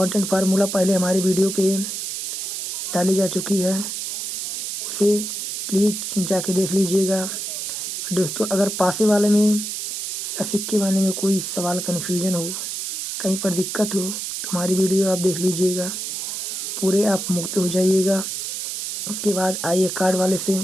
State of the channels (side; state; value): right; noise; hiss, 4 dB below the sound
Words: फार्मूला पहले हमारी वीडियो पे डाली जा चुकी है, उसे प्लीज़ जाके देख लीजिएगा। दोस्तों, अगर पासे वाले में या सिक्के वाले में कोई सवाल कन्फ्यूजन हो, कहीं पर दिक्कत हो, तो हमारी वीडियो आप देख लीजिएगा, पूरे आप मुक्त हो जाइएगा। उसके बाद आइए कार्ड वाले से